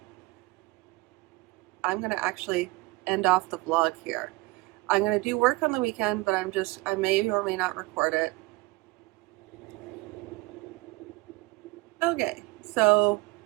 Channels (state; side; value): quieter; left; 22.5 dB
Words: I'm gonna actually end off the vlog here. I'm gonna do work on the weekend, but I may or may not record it. Okay, so